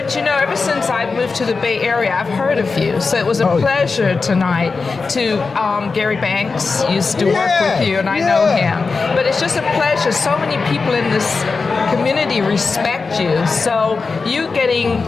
you know, ever since I moved to the Bay Area, I've heard of you. So it was a pleasure tonight to, Gary Banks used to work with you, and I know him. But it's just a pleasure. So many people in this community respect you. So you getting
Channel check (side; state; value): right; quieter; 4.4 dB